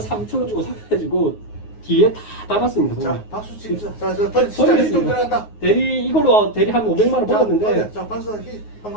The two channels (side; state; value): right; late; 9.5 ms